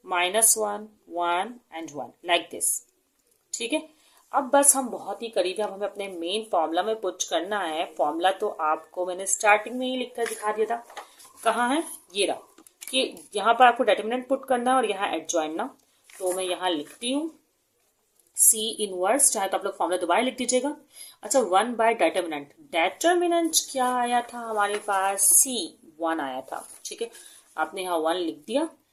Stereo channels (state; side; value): identical; both; correlation 1.00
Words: -1 1 एंड 1 लाइक दिस, ठीक है। अब बस हम बहुत ही करीब है, अब हमें अपने मेन फॉर्मूला में पुट करना है। फॉर्मूला तो आपको मैंने स्टार्टिंग में ही लिखकर दिखा दिया था, कहाँ है ये रहा, कि यहाँ पर आपको डिटरमिनेंट पुट करना है और यहाँ एडजॉइंट ना। तो मैं यहाँ लिखती हूँ सी इनवर्स, चाहे तो आप लोग फॉर्मूला दोबारा लिख दीजिएगा। अच्छा 1 बाय डिटरमिनेंट, डिटरमिनेंट क्या आया था हमारे पास, सी 1 आया था, ठीक है। आपने यहाँ 1 लिख दिया